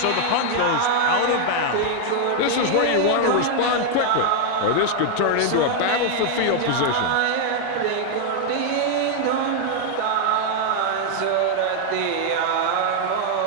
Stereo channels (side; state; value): both; different; correlation 0.00